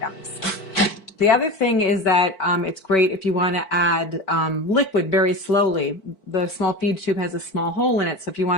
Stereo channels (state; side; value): late; right; 4.5 ms